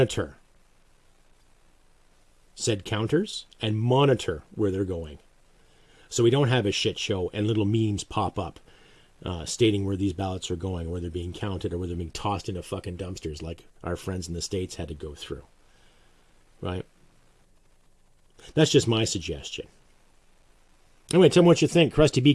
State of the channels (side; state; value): both; identical; correlation 1.00